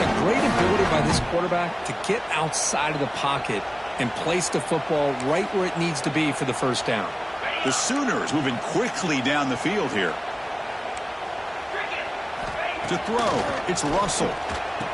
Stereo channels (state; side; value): identical; both; correlation 1.00